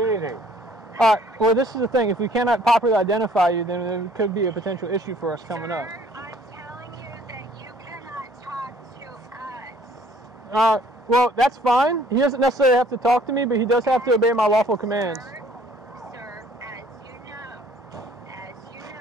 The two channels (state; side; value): normal; both; correlation 0.57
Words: All right. Well, this is the thing. If we cannot properly identify you, then there could be a potential issue for us coming up. Sir, I'm telling you that you cannot talk to us. Well, that's fine. He doesn't necessarily have to talk to me, but he does have to obey my lawful commands. Sir, as you know,